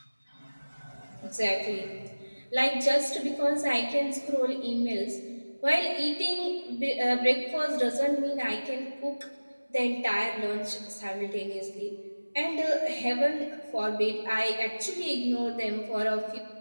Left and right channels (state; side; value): inverted; both; correlation -1.00